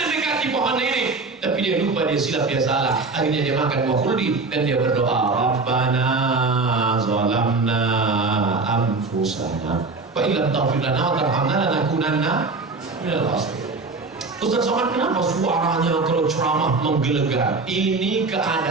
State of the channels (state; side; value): quieter; left; 3.8 dB